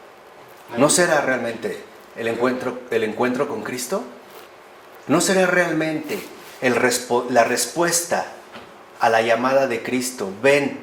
¿No será realmente el encuentro con Cristo? ¿No será realmente la respuesta a la llamada de Cristo, ven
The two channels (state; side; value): identical; both; correlation 1.00